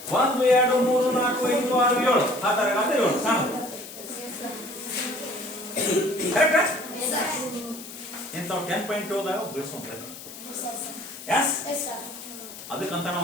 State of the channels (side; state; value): left; noise; hiss, 14 dB below the sound